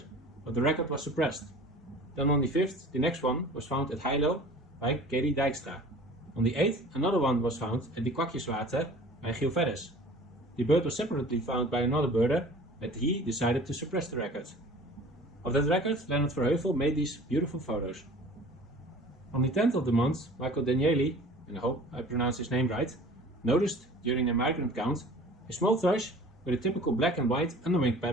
but the record was suppressed. Then on the 5th, the next one was found at Heilo by Katie Dijkstra. On the 8th, another one was found at the Kwakjeswater by Giel Verres. The bird was separately found by another birder, but he decided to suppress the record. Of that record, Lennart Verheuvel made these beautiful photos. On the 10th of the month, Michael Danieli, and I hope I pronounce his name right, noticed during a migrant count a small thrush with a typical black and white underwing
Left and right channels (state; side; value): normal; both; correlation 0.44